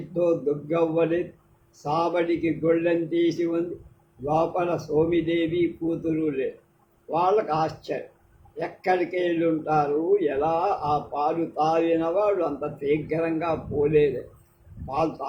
దుర్గవ్వని సాబడికి గొళ్ళెం తీసి ఉంది. లోపల సోమిదేవి కూతురు లేదు. వాళ్ళకు ఆశ్చర్యం. ఎక్కడికి వెళ్ళి ఉంటారు? ఎలా ఆ పాలు తాగిన వాడు అంత శీఘ్రంగా పోలేదే, పాలు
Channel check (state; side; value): identical; both; correlation 1.00